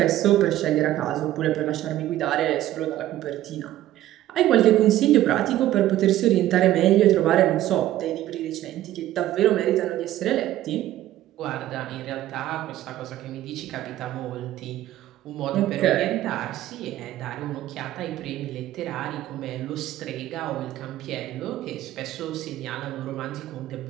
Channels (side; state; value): left; quieter; 13.9 dB